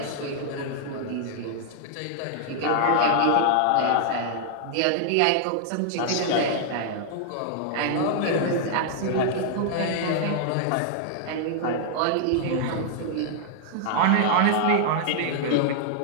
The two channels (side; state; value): both; different; correlation -0.01